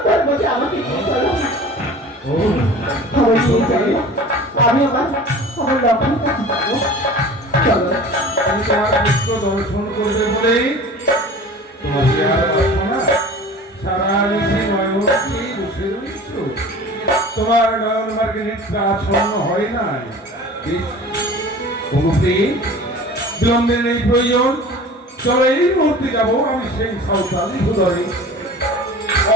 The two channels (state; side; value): normal; both; correlation 0.41